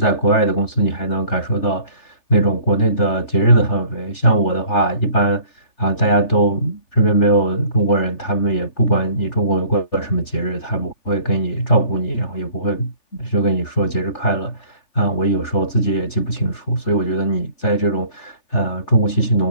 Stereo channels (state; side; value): late; right; 3.3 ms